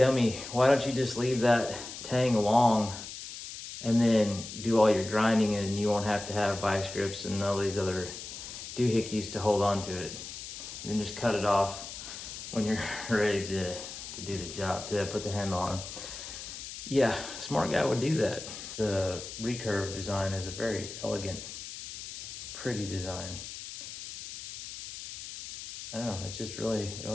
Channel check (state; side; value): noise; left; hiss, 10 dB below the sound